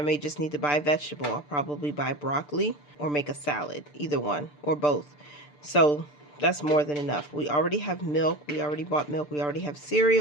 may just need to buy a vegetable. I'll probably buy broccoli or make a salad, either one or both. So that's more than enough. We already have milk. We already bought milk. We already have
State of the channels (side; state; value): right; late; 6.8 ms